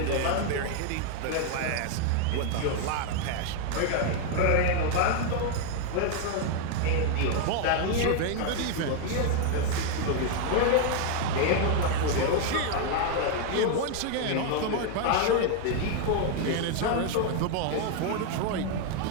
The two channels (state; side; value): different; both; correlation 0.00